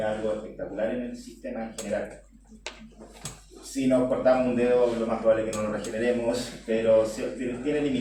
algo espectacular en el sistema en general. Si nos cortamos un dedo, lo más probable es que no lo regeneremos, pero tiene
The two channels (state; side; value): identical; both; correlation 1.00